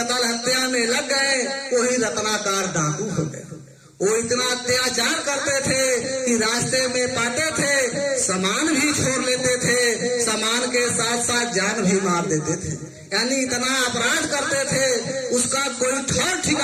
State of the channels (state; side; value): identical; both; correlation 1.00